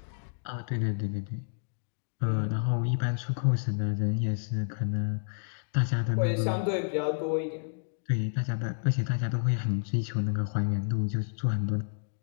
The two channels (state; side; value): silent; right; digital silence